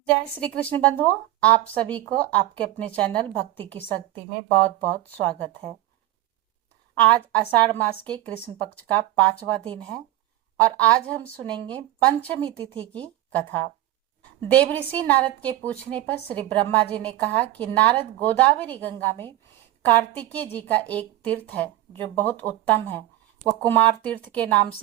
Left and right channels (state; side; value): quieter; left; 14.9 dB